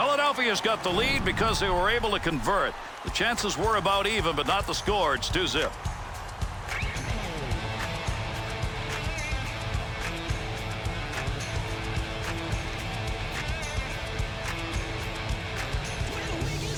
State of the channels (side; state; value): both; identical; correlation 1.00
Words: got the lead because they were able to convert. The chances were about even, but not the score. It's 2-0.